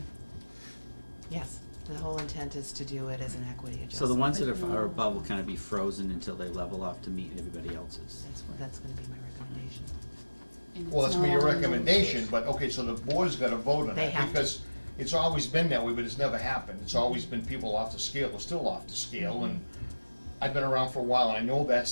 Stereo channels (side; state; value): both; inverted; correlation -1.00